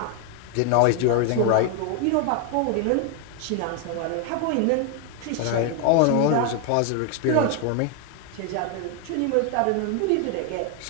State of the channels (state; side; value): different; both; correlation 0.01